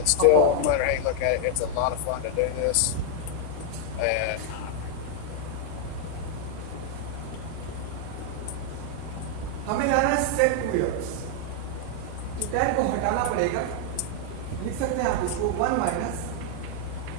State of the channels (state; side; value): different; both; correlation 0.00